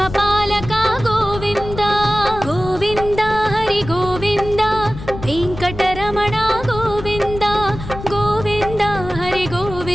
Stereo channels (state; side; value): noise; left; rumble, 11 dB below the sound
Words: ಗೋವಿಂದ ಗೋವಿಂದ ಹರಿ ಗೋವಿಂದ ವೆಂಕಟರಮಣ ಗೋವಿಂದ ಗೋವಿಂದ ಹರಿ